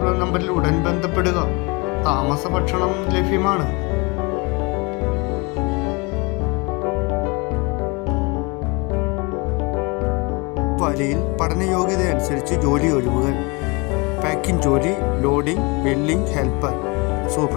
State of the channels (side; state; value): right; quieter; 28.1 dB